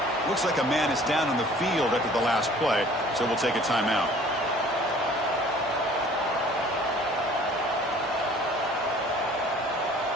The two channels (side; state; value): both; normal; correlation 0.52